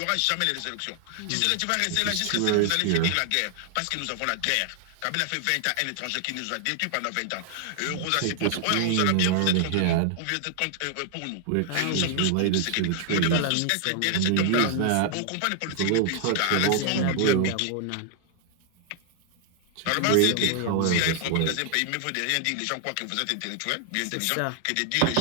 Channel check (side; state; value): both; different; correlation 0.00